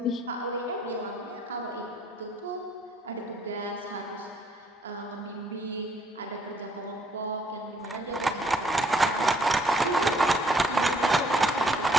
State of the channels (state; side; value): normal; both; correlation 0.64